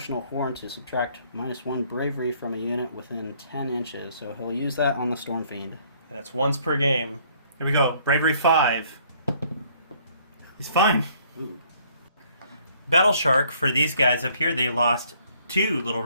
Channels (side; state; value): both; inverted; correlation -0.62